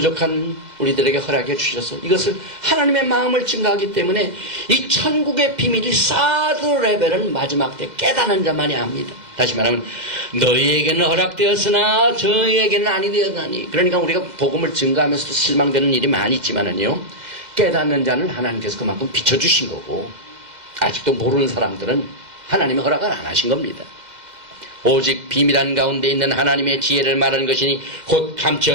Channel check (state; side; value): late; left; 2.1 ms